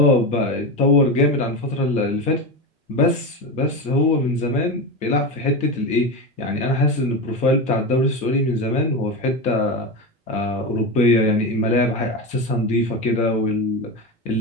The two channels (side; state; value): both; normal; correlation 0.19